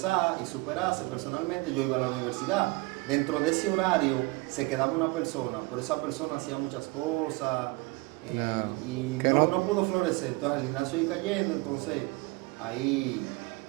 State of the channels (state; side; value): quieter; left; 24.1 dB